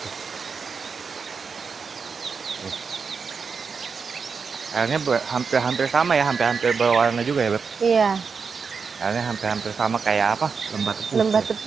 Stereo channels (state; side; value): quieter; left; 5.5 dB